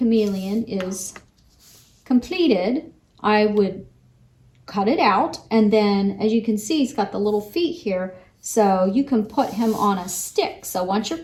is completed, I would cut it out, and then as you can see, he's got the little feet here, so you can put him on a stick. So once your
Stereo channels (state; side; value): identical; both; correlation 1.00